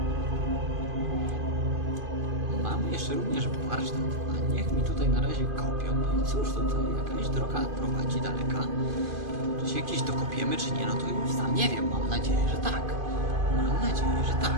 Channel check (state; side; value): late; left; 2.5 ms